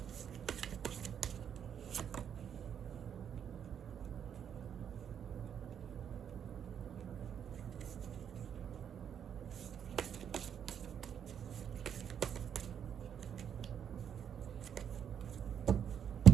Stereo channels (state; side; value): quieter; left; 8.4 dB